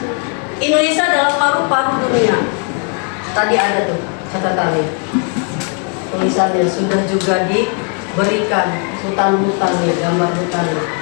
Indonesia adalah paru-paru dunia. Tadi ada tuh catatannya. Tulisannya sudah juga diberikan hutan-hutannya, gambar hutannya.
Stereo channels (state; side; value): quieter; right; 37.6 dB